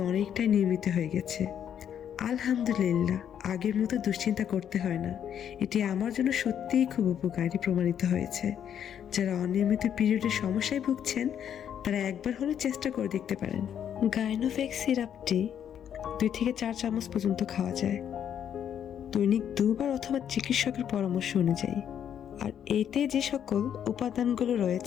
অনেকটাই নিয়মিত হয়ে গেছে। আলহামদুলিল্লাহ, আগের মতো দুশ্চিন্তা করতে হয় না। এটি আমার জন্য সত্যিই খুব উপকারী প্রমাণিত হয়েছে। যারা অনিয়মিত পিরিয়ডের সমস্যায় ভুগছেন, তারা একবার হলেও চেষ্টা করে দেখতে পারেন। গাইনোভ্যাক্স সিরাপটি 2 থেকে 4 চামচ পর্যন্ত খাওয়া যায়, দৈনিক 2 বার অথবা চিকিৎসকের পরামর্শ অনুযায়ী। আর এতে যে সকল উপাদানগুলো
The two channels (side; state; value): right; quieter; 9.2 dB